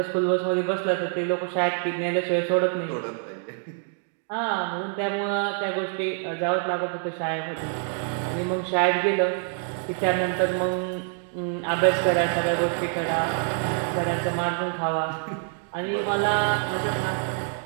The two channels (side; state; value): left; silent; 59 dB below the other